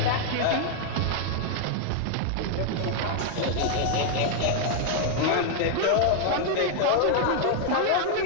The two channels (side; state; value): both; different; correlation 0.00